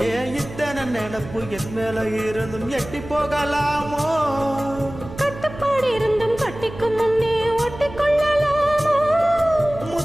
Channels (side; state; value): right; noise; hum, 13 dB below the sound